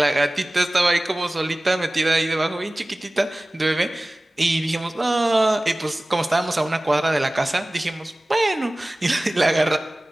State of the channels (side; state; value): both; normal; correlation 0.98